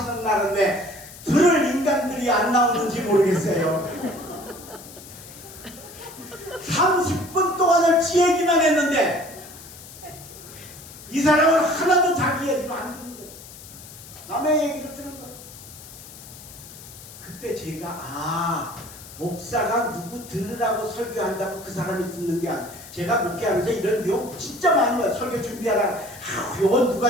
날은 왜 들을 인간들이 안 나오는지 모르겠어요. 30분 동안을 지 얘기만 했는데 이 사람은 하나도 자기 얘기를 안 듣는 거예요. 남의 얘기를 듣는 거예요. 그때 제가 목사가 누구 들으라고 설교한다고 그 사람이 듣는 게 아니라 제가 목회하면서 이런 내용 진짜 많이 봐요. 설교 준비하다가 이건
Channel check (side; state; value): left; noise; hiss, 17 dB below the sound